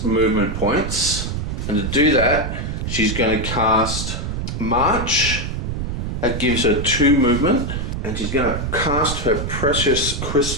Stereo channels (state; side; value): noise; right; rumble, 3 dB below the sound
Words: movement points. And to do that, she's going to cast March. That gives her 2 movement. And she's going to cast her precious